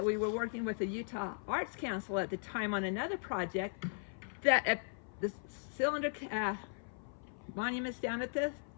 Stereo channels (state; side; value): silent; right; 53 dB below the other